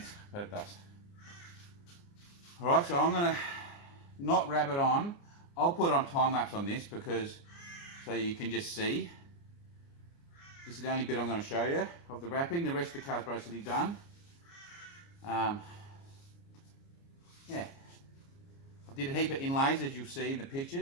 but it does. Alright, so I'm going to not wrap it on. I'll put on time lapse on this because so you can just see. This is the only bit I'm going to show you of the wrapping. The rest of the car's basically done. Yeah. I did a heap of inlays as you'll see in the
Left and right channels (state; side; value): late; right; 29 ms